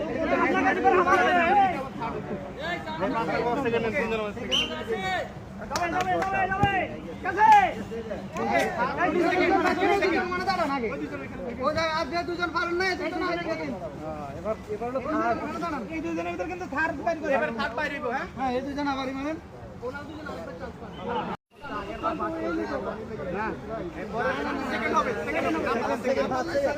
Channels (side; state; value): both; identical; correlation 1.00